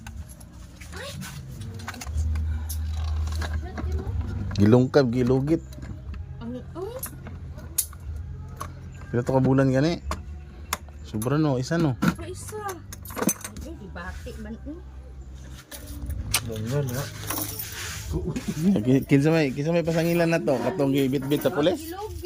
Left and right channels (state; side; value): identical; both; correlation 1.00